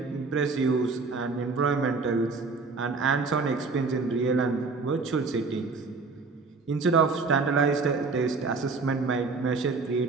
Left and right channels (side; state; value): left; quieter; 4.2 dB